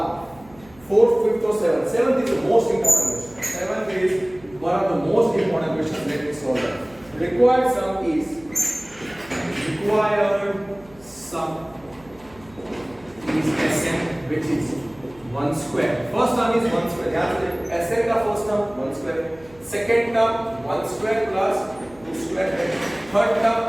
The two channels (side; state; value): right; noise; hum, 25 dB below the sound